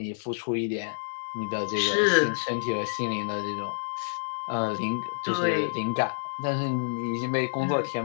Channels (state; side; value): silent; right; digital silence